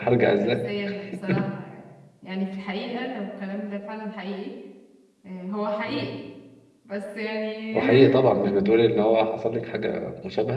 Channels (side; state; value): both; identical; correlation 1.00